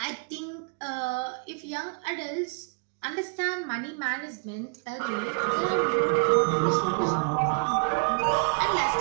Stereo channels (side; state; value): left; quieter; 39.9 dB